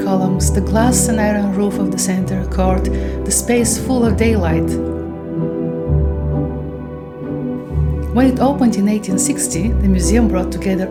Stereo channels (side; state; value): both; identical; correlation 1.00